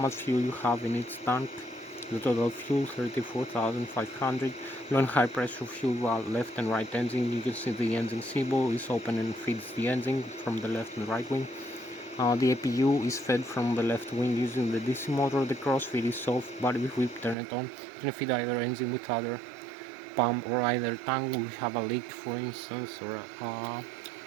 fuel you have in each tank. The total fuel 34,500. Low and high pressure fuel left and right engine. You can see the engine symbol is open and feeds the engine from the left and right wing. The APU is fed from the left wing using the DC motor. The crossfeed is off, but if we turn it on, you can feed either engine with other pump or either tank. We have a leak, for instance, or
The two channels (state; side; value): drops out; left; at 17.4 s